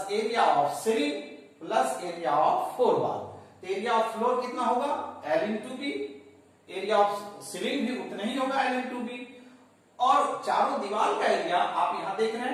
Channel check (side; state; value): both; identical; correlation 1.00